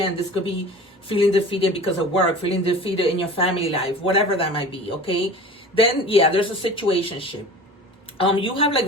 this could be feeling defeated because of work, feeling defeated in your family life, whatever that might be. Okay, then yeah, there's a situationship. You have, like,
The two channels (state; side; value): normal; both; correlation 0.38